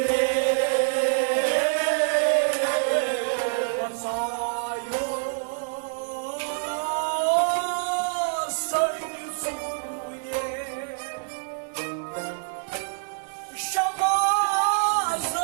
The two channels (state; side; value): silent; left; 61 dB below the other